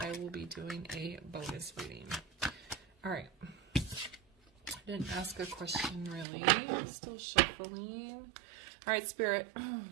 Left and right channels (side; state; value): left; drops out; at 6.2 s